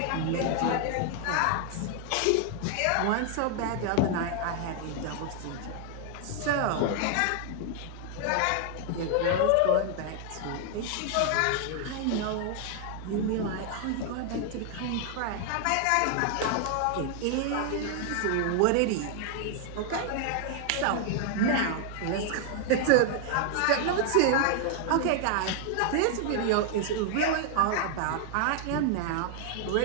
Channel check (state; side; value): different; both; correlation 0.00